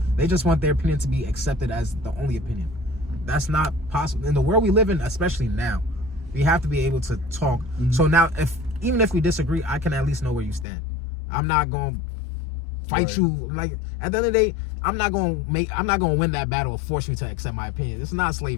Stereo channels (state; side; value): drops out; right; at 10.7 s